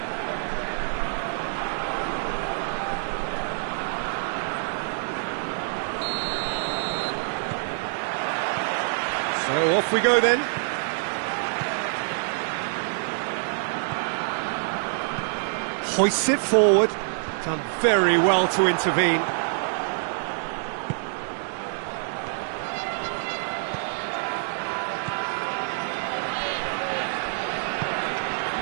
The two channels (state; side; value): silent; left; digital silence